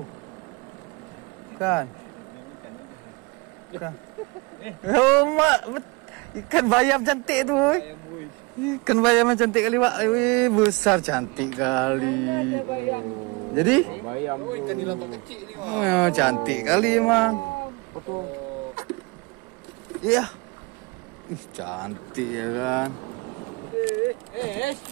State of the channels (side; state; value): left; quieter; 26.8 dB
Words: Bukan. Bukan. Oh, mak, ikan bayam cantik tuh. Ikan bayam cantik kali, Pak. Wih, besar cantik kali. Jadi? Bayam. Oh, ikan nila kecil nih, Pak. Oh, cantik kali emang. Betul. Iya. Ih, cantik ya kan.